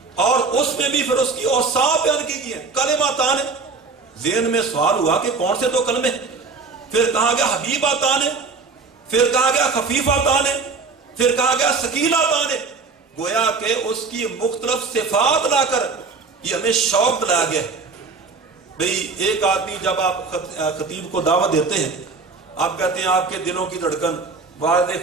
اور اس میں بھی پھر اس کی اوصاف بیان کی گئی ہے۔ کلمتان، ذہن میں سوال ہوا کہ کون سے 2 کلمے، پھر کہا گیا حبیبتان، پھر کہا گیا خفیفتان، پھر کہا گیا ثقیلتان، گویا کہ اس کی مختلف صفات لا کر یہ ہمیں شوق دلایا گیا۔ بھئی ایک آدمی جب آپ خطیب کو دعوت دیتے ہیں، آپ کہتے ہیں آپ کے دلوں کی دھڑکن والد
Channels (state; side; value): quieter; left; 4.3 dB